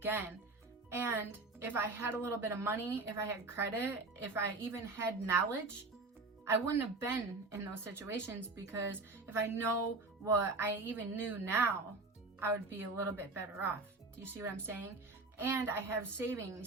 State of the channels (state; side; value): quieter; left; 3.5 dB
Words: And if I had a little bit of money, if I had credit, if I even had knowledge, I wouldn't have been in those situations, because if I know what I even knew now, I would be a little bit better off. Do you see what I'm saying? And I have